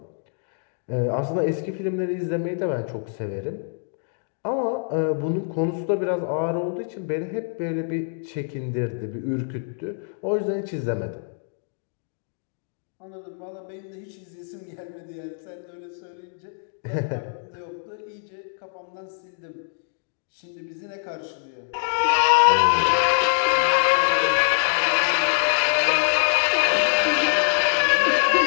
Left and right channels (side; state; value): right; silent; digital silence